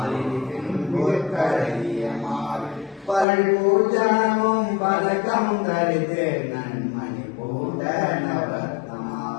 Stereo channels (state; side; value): drops out; right; at 3.2 s